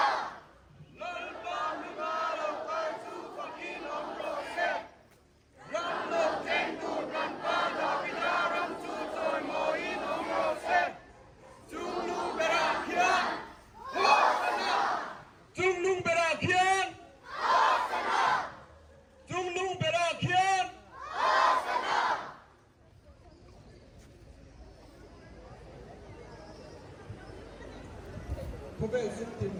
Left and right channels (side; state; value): both; identical; correlation 1.00